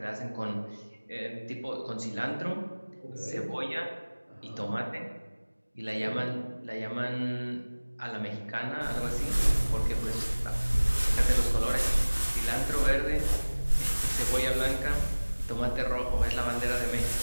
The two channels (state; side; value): inverted; both; correlation -1.00